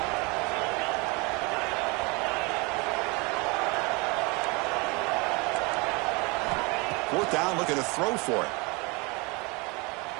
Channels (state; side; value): quieter; left; 28.0 dB